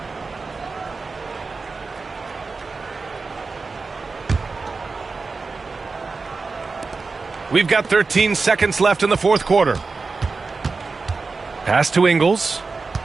We've got 13 seconds left in the fourth quarter. Pass to Ingles.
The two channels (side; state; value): left; quieter; 4.2 dB